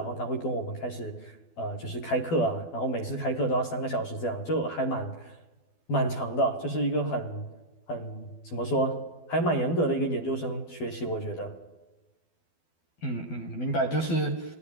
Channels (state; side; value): late; right; 12 ms